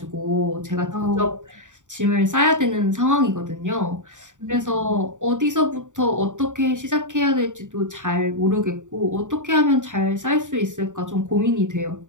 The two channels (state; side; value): late; left; 0.86 ms